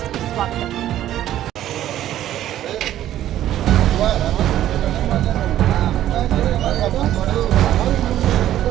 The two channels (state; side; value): quieter; left; 12.5 dB